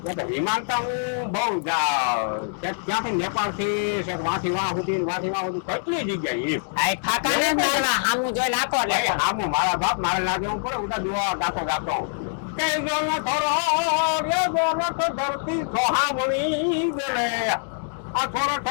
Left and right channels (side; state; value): right; silent; digital silence